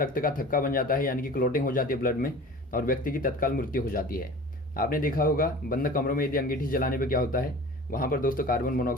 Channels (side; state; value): both; normal; correlation 0.40